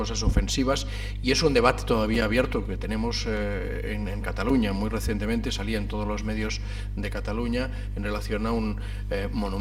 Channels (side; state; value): both; identical; correlation 1.00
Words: ofensivas, y es un debate todavía abierto que tenemos en Cataluña. Muy recientemente salía en todos los medios de Cataluña en relación a un